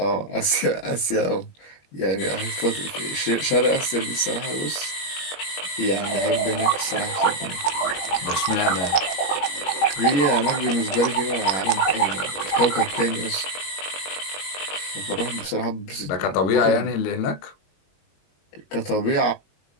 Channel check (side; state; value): right; late; 21 ms